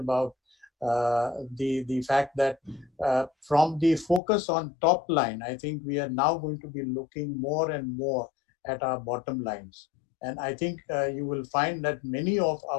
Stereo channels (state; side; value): drops out; right; at 4.2 s